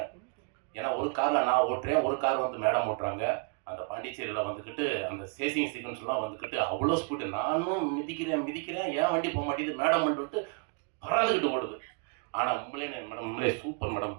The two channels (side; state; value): left; quieter; 38.4 dB